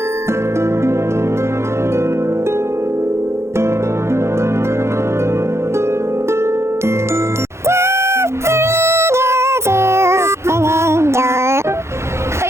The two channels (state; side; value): late; left; 0.13 ms